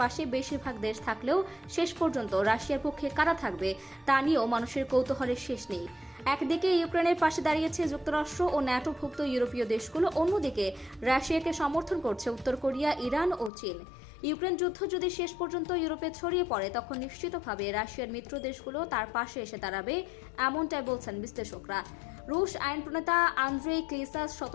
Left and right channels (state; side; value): drops out; right; at 13.5 s